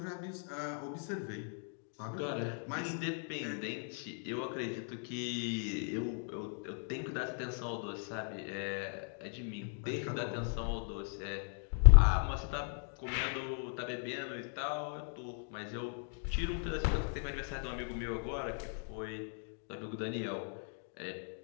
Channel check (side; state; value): right; silent; 53 dB below the other